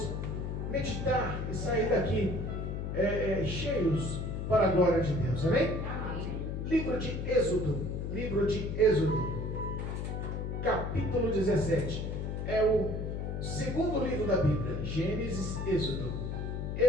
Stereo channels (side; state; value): left; noise; hum, 3 dB below the sound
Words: meditar e sair daqui cheios para a glória de Deus, amém? Amém. Livro de Êxodo, capítulo 17, é o segundo livro da Bíblia, Gênesis, Êxodo,